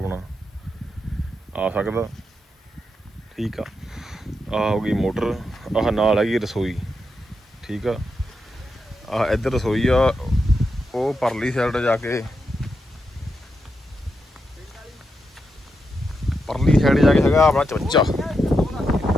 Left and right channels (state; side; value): normal; both; correlation 0.85